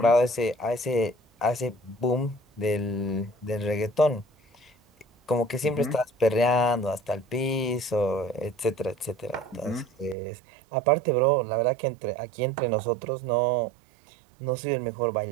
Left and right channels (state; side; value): drops out; left; at 10.2 s